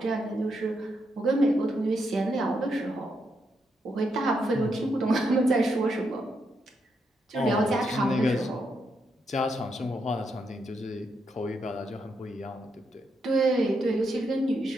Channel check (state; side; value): normal; both; correlation 0.80